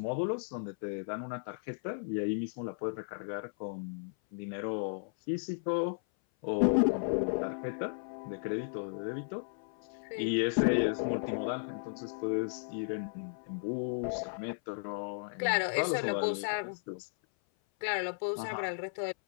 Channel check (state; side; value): silent; right; 55 dB below the other